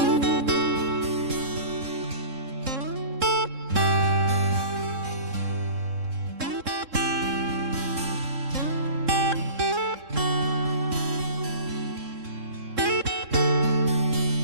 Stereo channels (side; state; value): left; late; 3.7 ms